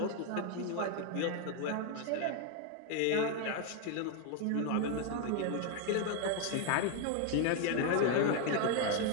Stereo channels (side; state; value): both; different; correlation 0.01